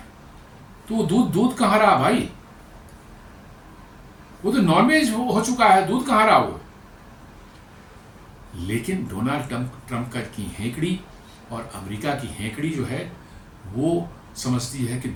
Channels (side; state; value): both; identical; correlation 1.00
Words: तो दूध कहाँ रहा भाई? वो तो नॉन वेज हो चुका है, दूध कहाँ रहा वो? लेकिन डोनाल्ड ट्रंप की हेकड़ी और अमेरिका की हेकड़ी जो है वो समझती है कि